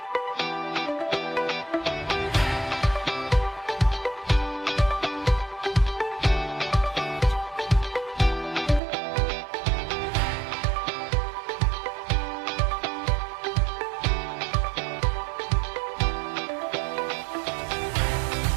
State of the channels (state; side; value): drops out; left; at 8.8 s